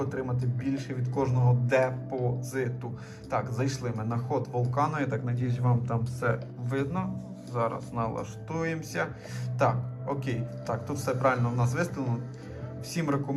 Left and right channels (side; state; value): both; identical; correlation 1.00